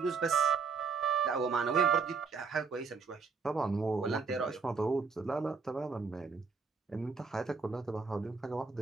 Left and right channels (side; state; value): left; quieter; 5.0 dB